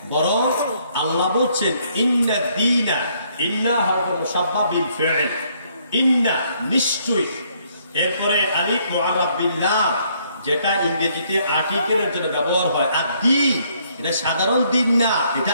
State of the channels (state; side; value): inverted; both; correlation -0.68